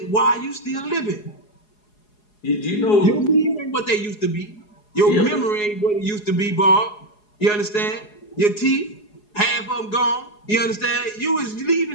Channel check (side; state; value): right; late; 4.8 ms